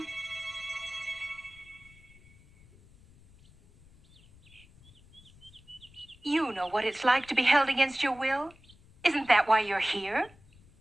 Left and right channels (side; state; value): left; noise; rumble, 26 dB below the sound